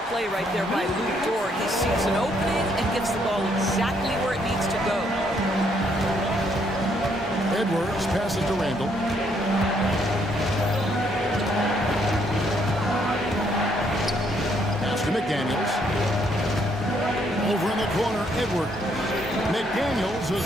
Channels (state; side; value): normal; both; correlation 0.71